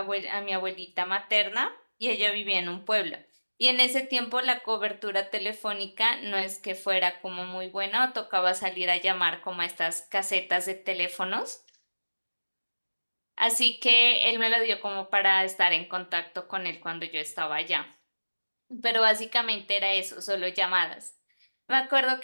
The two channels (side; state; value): both; inverted; correlation -1.00